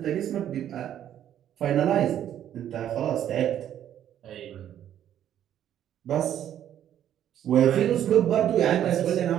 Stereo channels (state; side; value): quieter; left; 10.7 dB